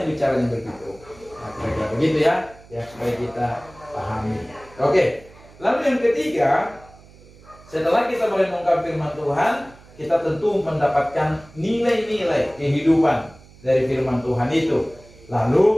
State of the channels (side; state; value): right; noise; hum, 24 dB below the sound